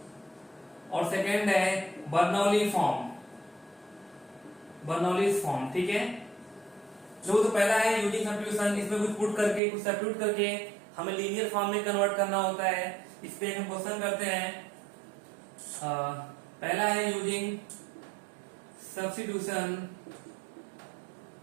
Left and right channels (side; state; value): left; drops out; at 9.6 s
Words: और सेकेंड है बर्नौली फॉर्म। बर्नौलीज फॉर्म, ठीक है। जो तो पहला है यूजिंग सब्स्टिट्यूशन, इसमें कुछ पुट करके कुछ सब्स्टिट्यूट करके हमें लीनियर फॉर्म में कन्वर्ट करना होता है। इस पे हम क्वेश्चन करते हैं। पहला है यूजिंग सब्स्टिट्यूशन,